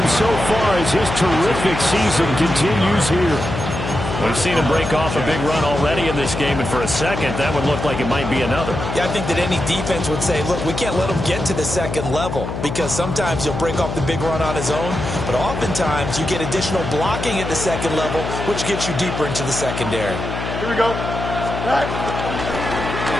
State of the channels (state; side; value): noise; left; hum, 5 dB below the sound